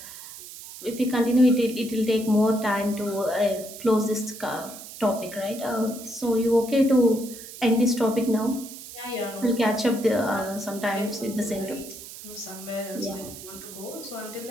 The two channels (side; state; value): right; noise; hiss, 14 dB below the sound